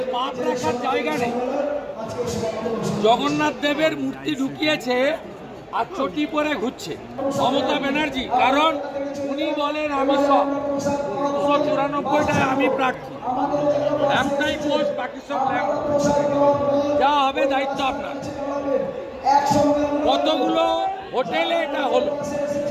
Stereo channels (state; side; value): identical; both; correlation 1.00